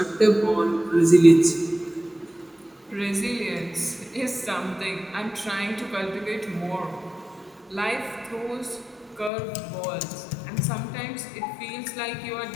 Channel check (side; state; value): right; drops out; at 9.3 s